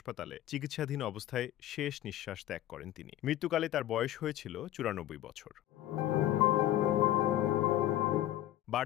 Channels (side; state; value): right; quieter; 13.5 dB